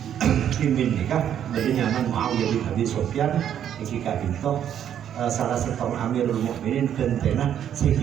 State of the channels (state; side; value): quieter; left; 9.7 dB